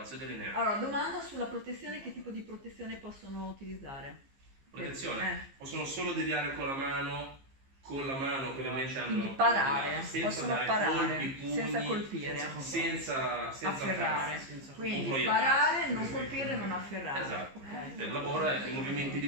delineato. Allora, domanda sulla protezione, che tipo di protezione possono utilizzare? Protezione, possono solo deviare con la mano che ovviamente hanno... Quindi parare, senza possono dare parare, colpi, pugni, senza colpire, senza afferrare. senza Quindi proiettare. parare, non colpire, non afferrare. Esatto. Il lavoro è i movimenti di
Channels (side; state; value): left; late; 15 ms